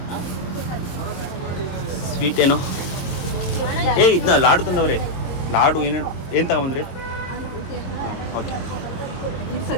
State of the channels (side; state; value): right; late; 22 ms